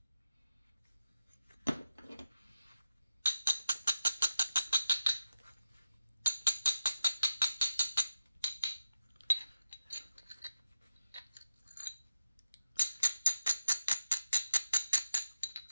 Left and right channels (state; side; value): inverted; both; correlation -0.88